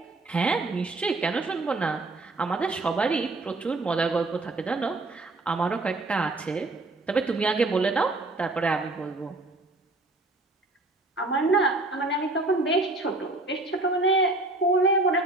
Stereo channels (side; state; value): left; quieter; 3.0 dB